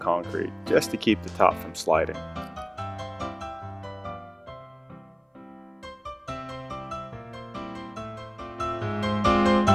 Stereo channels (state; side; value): identical; both; correlation 1.00